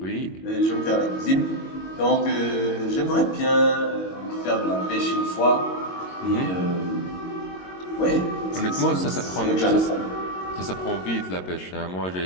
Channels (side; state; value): right; late; 22 ms